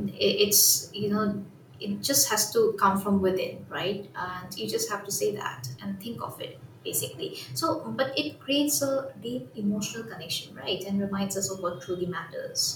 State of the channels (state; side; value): identical; both; correlation 1.00